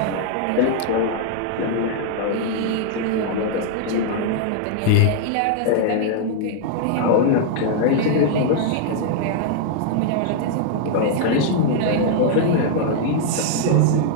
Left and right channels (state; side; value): different; both; correlation -0.01